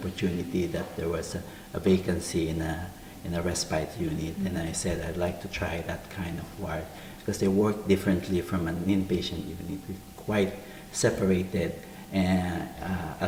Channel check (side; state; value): both; identical; correlation 1.00